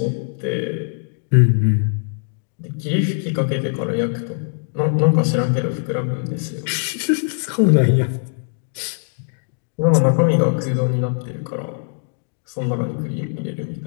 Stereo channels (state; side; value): silent; right; digital silence